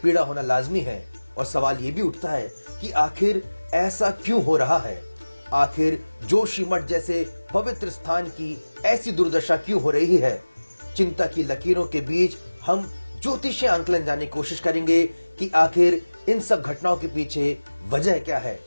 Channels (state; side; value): inverted; both; correlation -1.00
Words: पीड़ा होना लाजमी है और सवाल ये भी उठता है कि आखिर ऐसा क्यों हो रहा है। आखिर जोशीमठ जैसे पवित्र स्थान की ऐसी दुर्दशा क्यों हो रही है। चिंता की लकीरों के बीच हम ज्योतिषीय आंकलन जानने की कोशिश करेंगे कि आखिर इन सब घटनाओं के पीछे वजह क्या है।